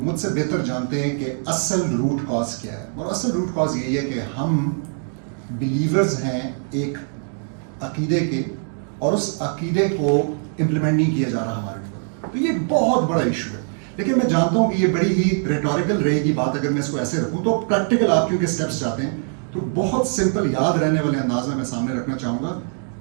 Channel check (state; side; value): silent; left; 57 dB below the other